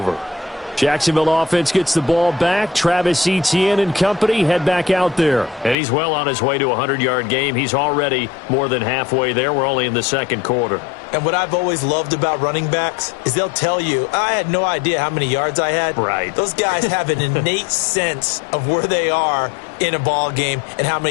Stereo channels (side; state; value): right; drops out; at 5.8 s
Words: Jacksonville offense gets the ball back. Travis Etienne and company head back out there. And he's well on his way to a 100-yard game. He's already more than halfway there. We're only in the 2nd quarter. And what I've always loved about running backs is they'll tell you, I had no idea how many yards I had. Right. Those guys have an innate sense of where they are in a ball game and how